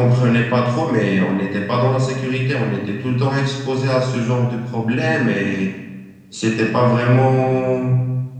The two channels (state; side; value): identical; both; correlation 1.00